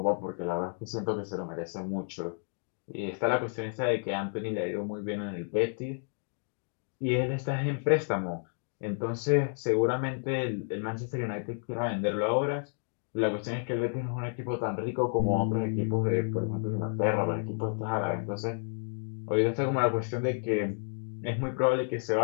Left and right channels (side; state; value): right; silent; 57 dB below the other